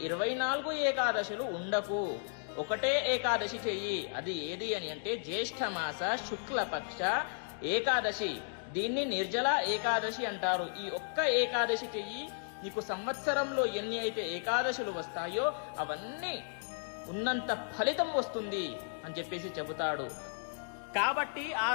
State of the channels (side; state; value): right; silent; digital silence